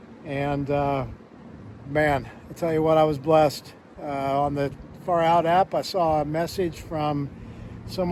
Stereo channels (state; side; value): identical; both; correlation 1.00